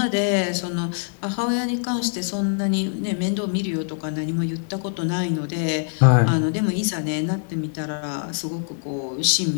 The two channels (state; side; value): silent; right; 63 dB below the other